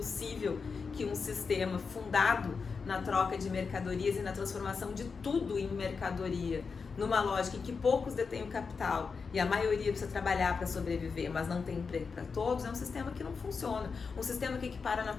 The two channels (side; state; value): right; quieter; 5.2 dB